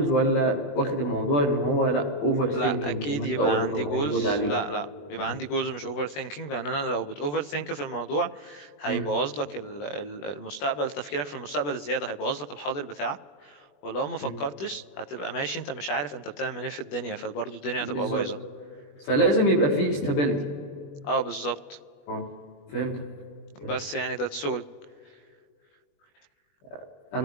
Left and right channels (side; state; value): right; late; 21 ms